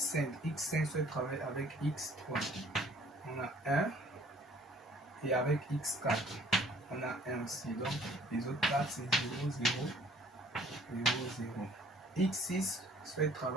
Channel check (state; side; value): normal; both; correlation 0.56